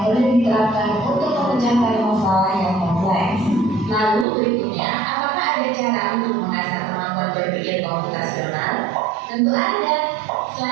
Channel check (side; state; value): left; drops out; at 4.2 s